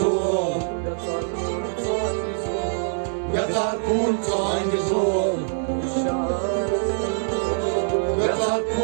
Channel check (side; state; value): left; silent; digital silence